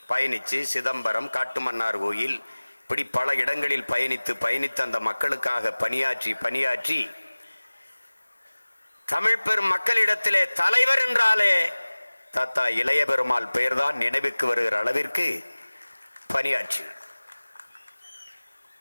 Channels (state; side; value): inverted; both; correlation -1.00